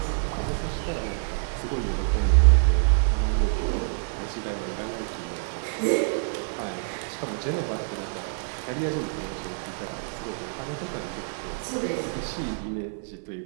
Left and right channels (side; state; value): left; silent; 60 dB below the other